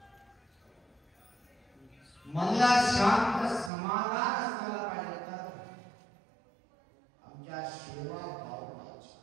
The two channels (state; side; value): drops out; left; at 3.7 s